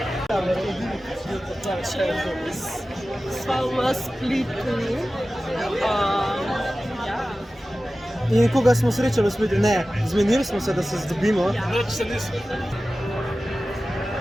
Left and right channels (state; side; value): normal; both; correlation 0.95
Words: Sva v Splitu. In koga smo srečali v Splitu? Ne, zmenili smo se, da se zdobimo. Noč se nismo.